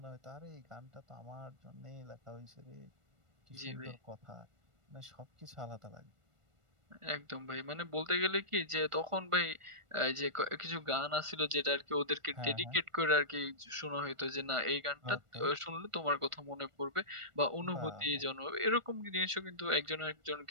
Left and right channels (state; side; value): late; left; 1.4 ms